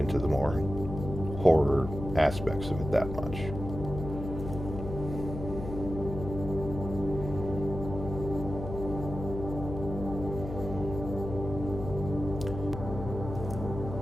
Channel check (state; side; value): noise; left; hum, 7 dB below the sound